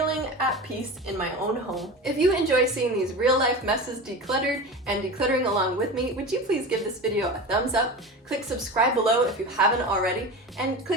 at peace in my own home. If you enjoy seeing these real life messes decluttered and decluttering along with me, would you please give this video a thumbs up, click subscribe below if you haven't already, and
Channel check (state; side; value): normal; both; correlation 0.29